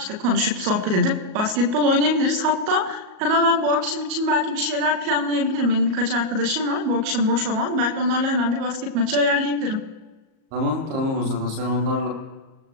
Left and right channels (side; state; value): left; late; 38 ms